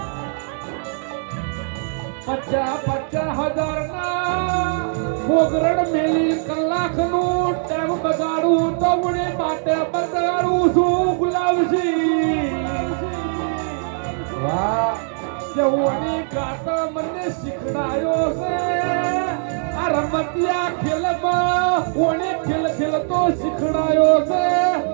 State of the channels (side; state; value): left; silent; 64 dB below the other